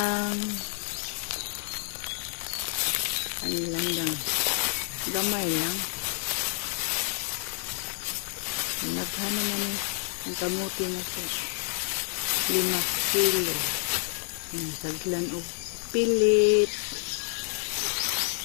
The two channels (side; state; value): right; silent; digital silence